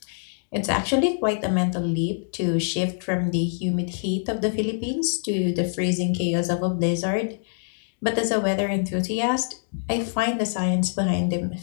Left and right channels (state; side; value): silent; right; digital silence